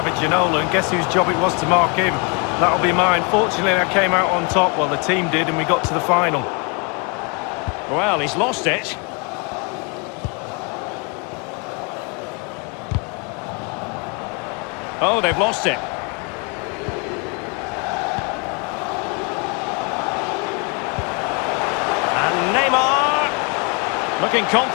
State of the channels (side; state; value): right; quieter; 33.7 dB